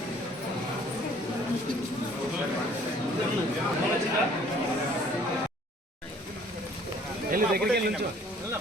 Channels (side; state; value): both; normal; correlation 0.56